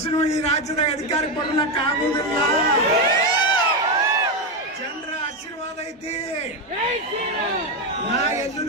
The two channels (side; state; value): both; normal; correlation 0.10